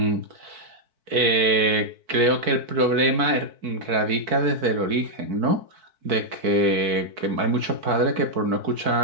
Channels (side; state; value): left; late; 4.5 ms